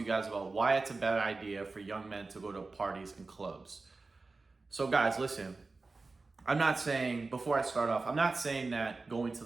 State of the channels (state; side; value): quieter; left; 3.7 dB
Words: you guys about why it's a bad idea for young men to go to parties and clubs. So guys, listen, I'm not saying, before I start off, I'm not saying that going to